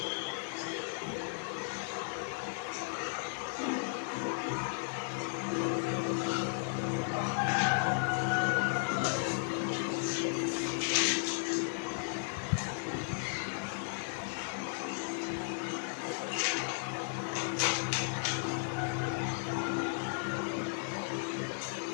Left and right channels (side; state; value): right; silent; digital silence